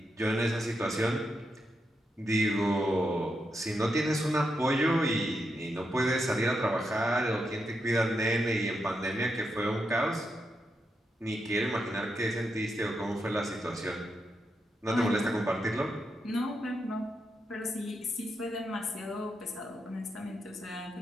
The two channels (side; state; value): both; normal; correlation 0.84